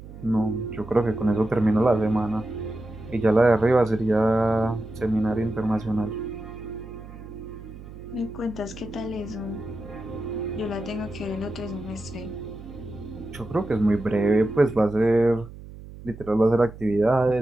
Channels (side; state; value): right; noise; hum, 15 dB below the sound